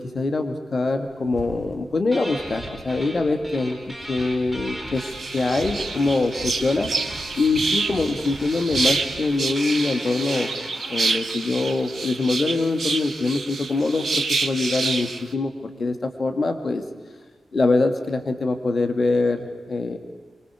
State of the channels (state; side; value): normal; both; correlation 0.90